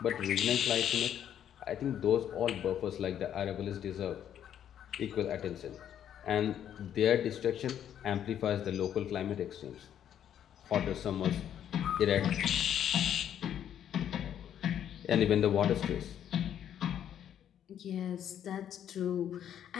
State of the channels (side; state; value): right; quieter; 9.9 dB